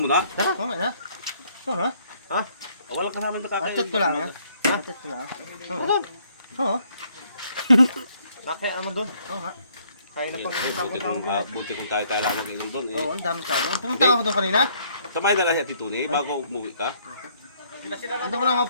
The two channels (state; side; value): inverted; both; correlation -0.66